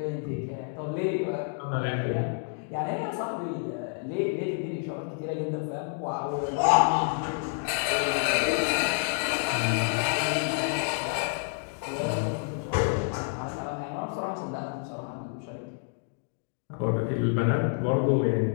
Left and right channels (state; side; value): silent; right; 58 dB below the other